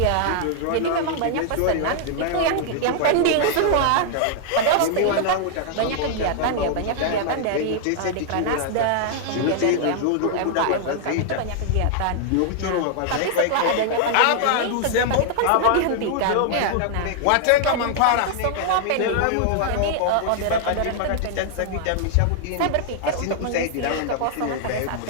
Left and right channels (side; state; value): both; different; correlation -0.01